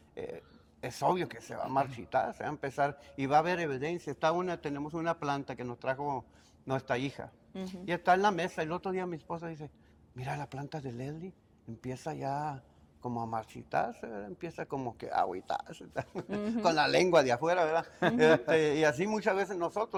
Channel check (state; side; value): identical; both; correlation 1.00